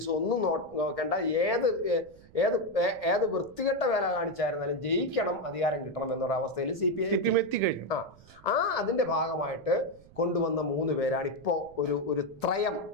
ഒന്നും നോക്കേണ്ട, ഏത് വൃത്തികെട്ട വേല കാണിച്ചായിരുന്നാലും ജയിക്കണം, അധികാരം കിട്ടണം എന്നൊരു അവസ്ഥയിൽ CPM എത്തിക്കഴിഞ്ഞു. അതിന്റെ ഭാഗമായിട്ട് കൊണ്ടുവന്ന 3 പേരാണ് ഇപ്പോൾ ഒരു ത്രയം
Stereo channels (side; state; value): right; noise; rumble, 24 dB below the sound